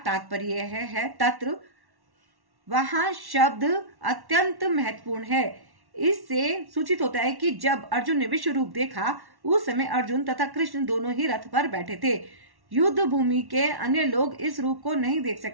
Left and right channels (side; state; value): left; late; 1.1 ms